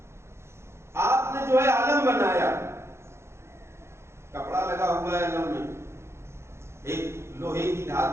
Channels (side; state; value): left; late; 0.13 ms